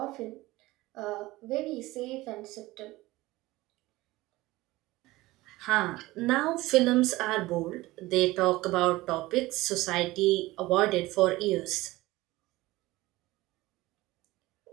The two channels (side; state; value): left; quieter; 19.1 dB